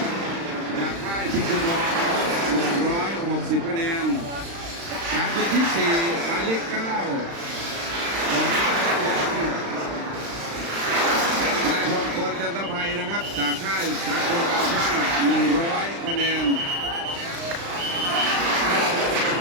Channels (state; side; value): late; left; 35 ms